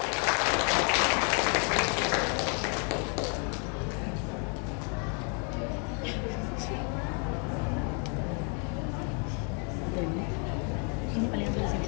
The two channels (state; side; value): quieter; right; 37.5 dB